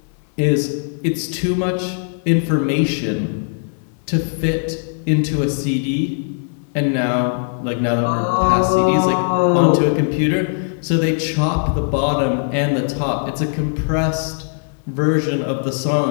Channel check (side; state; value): right; silent; digital silence